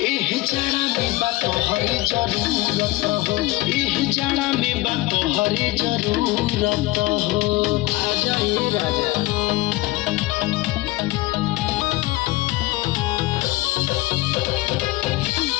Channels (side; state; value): right; quieter; 19.5 dB